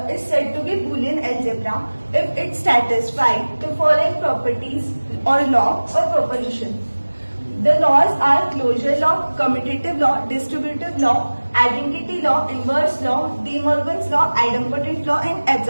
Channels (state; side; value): inverted; both; correlation -1.00